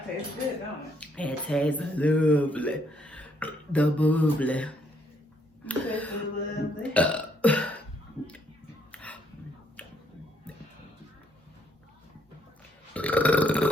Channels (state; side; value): normal; both; correlation 0.70